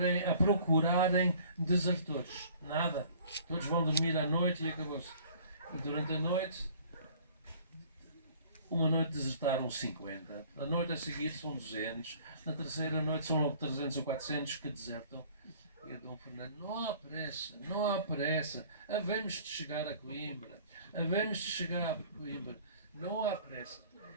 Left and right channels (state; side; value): inverted; both; correlation -0.52